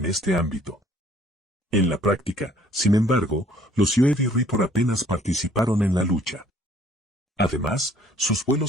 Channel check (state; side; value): normal; both; correlation 0.58